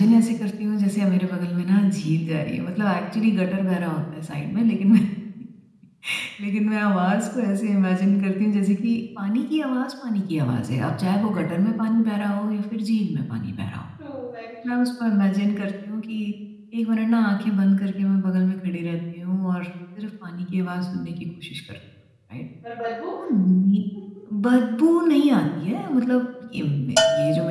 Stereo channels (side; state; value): both; identical; correlation 1.00